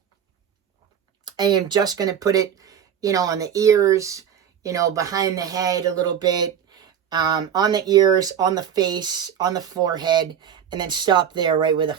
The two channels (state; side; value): quieter; left; 8.7 dB